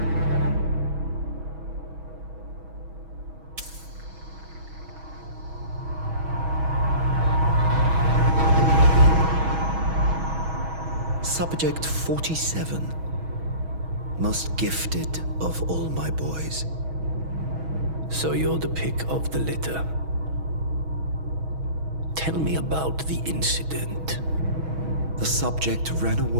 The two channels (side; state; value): left; late; 6.2 ms